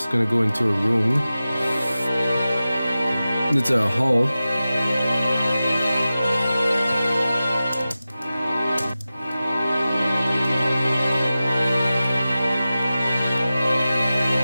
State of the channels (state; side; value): inverted; both; correlation -0.95